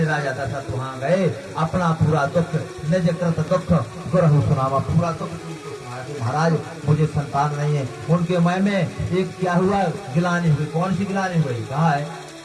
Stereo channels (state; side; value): identical; both; correlation 1.00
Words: राजा दशरथ वहां गए, अपना पूरा दुख, निज कृत दुख गुरहु सुनावा, पूरा दुख महाराज मुझे संतान नहीं है। उनके मन में एक क्या हुआ? गिलानी हुई। कौन सी गिलानी हुई? कहा है